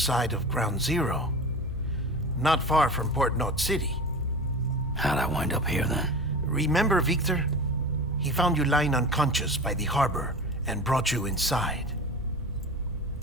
of Ground Zero. Not far from Port Knot City. How'd I wind up here then? Remember Victor? He found you lying unconscious by the harbor and brought you inside.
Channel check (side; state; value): both; normal; correlation 0.31